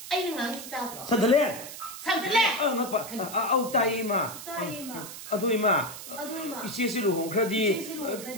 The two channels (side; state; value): right; noise; hiss, 11 dB below the sound